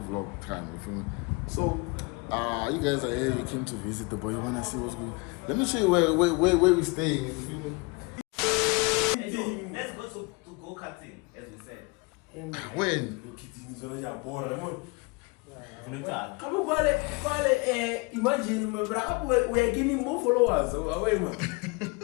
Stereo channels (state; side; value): quieter; right; 28.3 dB